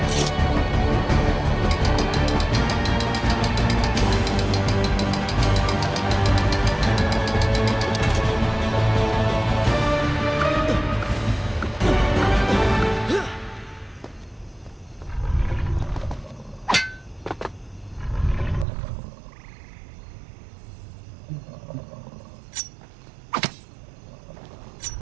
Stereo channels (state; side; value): drops out; left; at 18.7 s